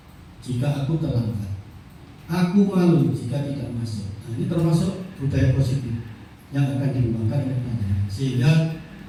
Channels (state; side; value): identical; both; correlation 1.00